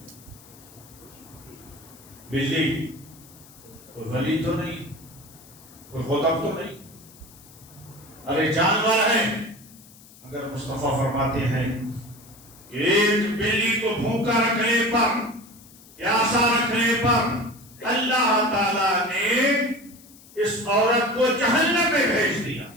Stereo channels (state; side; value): noise; left; hiss, 23 dB below the sound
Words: بلی کوئی ولی تو نہیں، کوئی خطب تو نہیں، ارے جانور ہے۔ اگر مصطفیٰ فرماتے ہیں کہ ایک بلی کو بھوکا رکھنے پر، پیاسا رکھنے پر اللہ تعالیٰ نے اس عورت کو جہنم میں بھیج دیا،